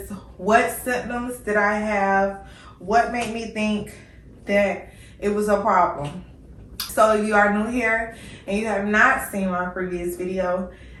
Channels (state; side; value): identical; both; correlation 1.00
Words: what symptoms did I have? What made me think that it was a problem? So if you are new here and you have not seen my previous video,